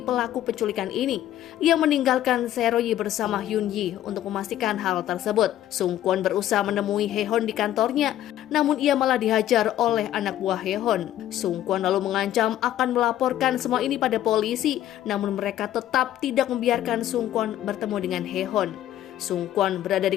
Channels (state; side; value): quieter; right; 12.5 dB